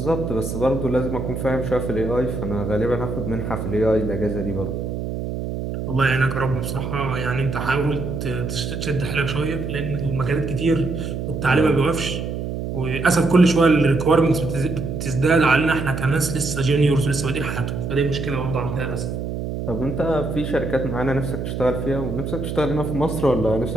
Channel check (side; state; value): right; noise; hum, 4 dB below the sound